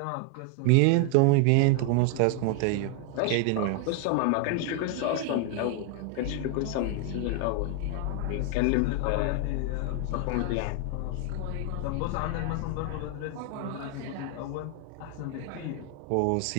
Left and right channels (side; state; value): both; different; correlation 0.01